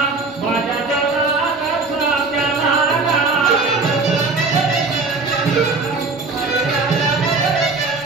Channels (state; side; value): quieter; left; 3.9 dB